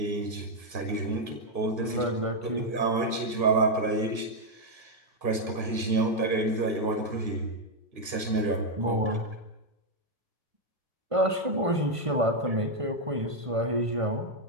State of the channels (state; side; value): late; left; 1.5 ms